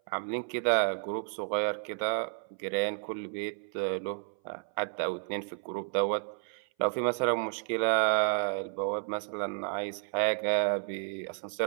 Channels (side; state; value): left; silent; 57 dB below the other